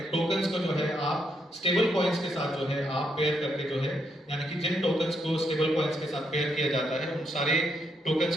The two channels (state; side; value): normal; both; correlation 0.77